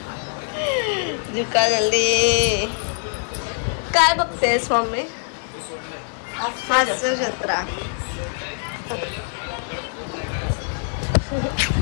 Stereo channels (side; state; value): right; silent; 59 dB below the other